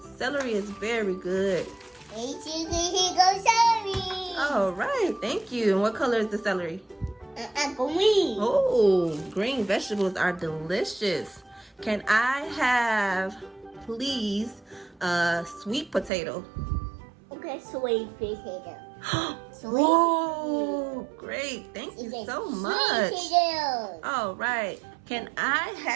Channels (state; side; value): drops out; left; at 16.1 s